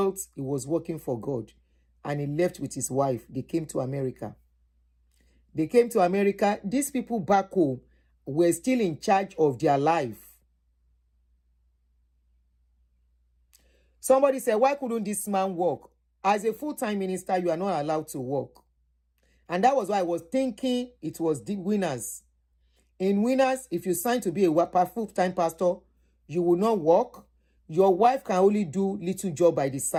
he was working for God. And he left with his wife. They came to America. They came to America. These people back home were still in charge of their life. Somebody said, why couldn't this man work? As a full-time minister, you are not allowed to work. And that was why I was thinking it was the winners. In winners, if you sign to be a full-time pastor, you will not work. Your wife can only do little job by the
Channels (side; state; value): both; identical; correlation 1.00